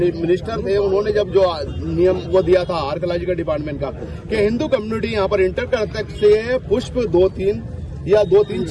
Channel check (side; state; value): both; identical; correlation 1.00